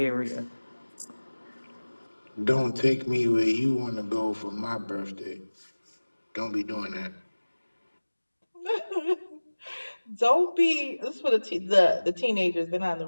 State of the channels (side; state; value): both; inverted; correlation -1.00